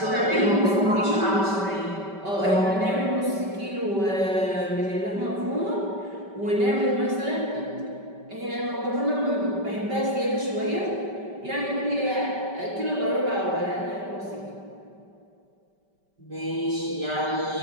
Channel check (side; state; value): left; late; 5.1 ms